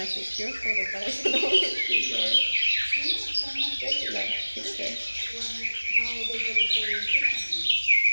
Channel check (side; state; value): both; inverted; correlation -1.00